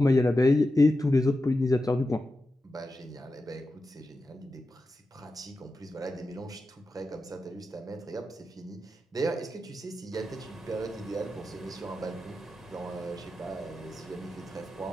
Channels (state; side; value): normal; both; correlation 0.91